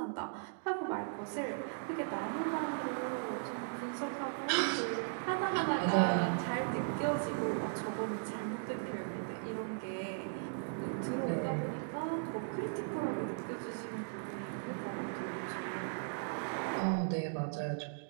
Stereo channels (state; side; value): silent; left; digital silence